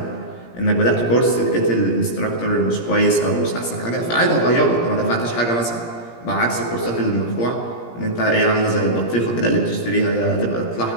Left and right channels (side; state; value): right; late; 17 ms